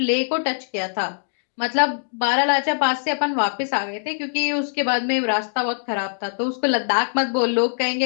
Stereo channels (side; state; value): right; silent; digital silence